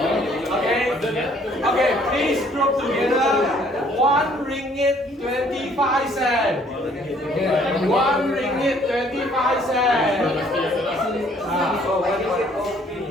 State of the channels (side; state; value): both; normal; correlation 0.61